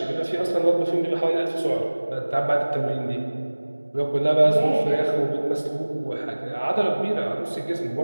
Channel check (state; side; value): inverted; both; correlation -1.00